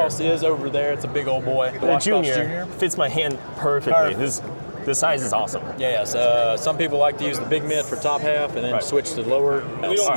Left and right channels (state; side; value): inverted; both; correlation -1.00